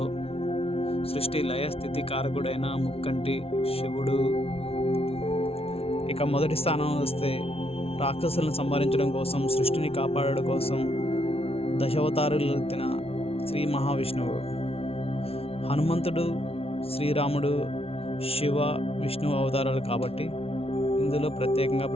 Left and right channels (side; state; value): right; late; 0.28 ms